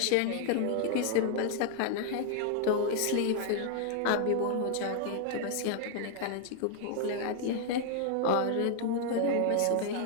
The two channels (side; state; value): both; different; correlation 0.00